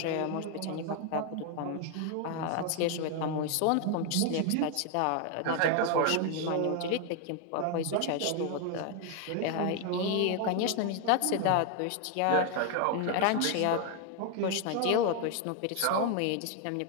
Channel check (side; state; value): both; different; correlation 0.01